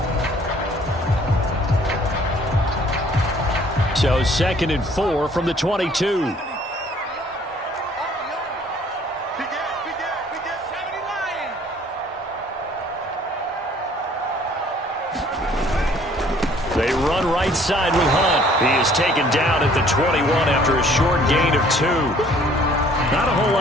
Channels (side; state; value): both; normal; correlation 0.57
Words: So 2nd and 4 from the 22. They run right side with Hunt. He is taken down at the 21 after a short gain of 2. Not a whole